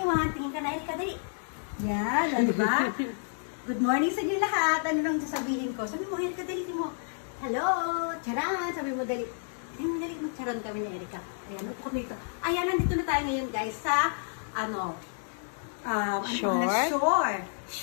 Tingin ka na, Erika, dali. Yan, o diba? Good morning sa inyo lahat. Ano lang sasabihin ko? Sabi mo, Erika, dali mo. Hello, Tcharam! Sabi mo, dali. Sabi mo, dali. Magcharan kami ni Erika. Ayan, upo kami dito. Ayan, nandito na tayo ngayon, guys, sa,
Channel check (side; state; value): right; silent; 58 dB below the other